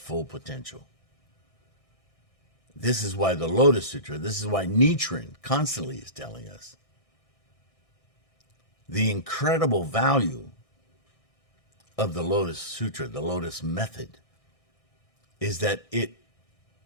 potential. This is why the Lotus Sutra, this is why Nichiren constantly is telling us the incredible value of the Lotus Sutra, the Lotus method, is that it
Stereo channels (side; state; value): right; late; 1.6 ms